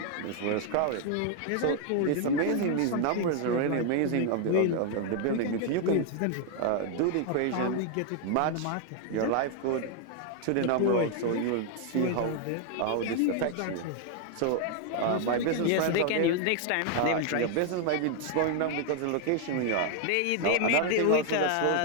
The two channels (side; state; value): both; different; correlation 0.00